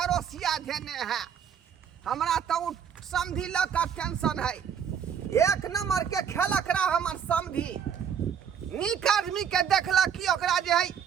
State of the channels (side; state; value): left; quieter; 8.0 dB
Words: धेने है। हमरा तो उ समधी ल का टेंशन है। एक नंबर के खेलक रहा हमर समधी, नीक आदमी के देखला कि ओकरा जे है